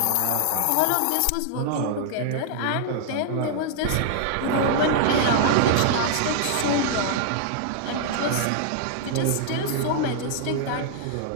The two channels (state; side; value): different; both; correlation -0.01